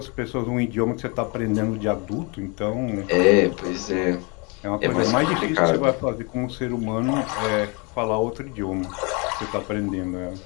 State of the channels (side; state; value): right; quieter; 31.1 dB